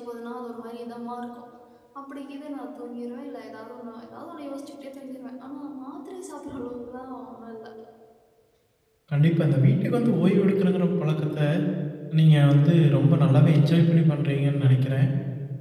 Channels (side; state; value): both; identical; correlation 1.00